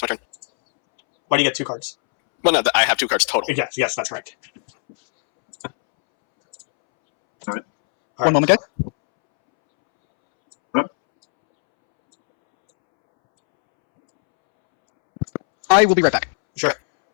my turn. Why do you get 2 cards? Well, no, I have 2 cards total. Yes, that's correct. All right. One moment, guys. I will be right back. Sure.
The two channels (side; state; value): right; silent; 67 dB below the other